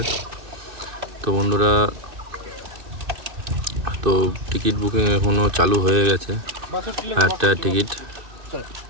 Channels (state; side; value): late; left; 2.6 ms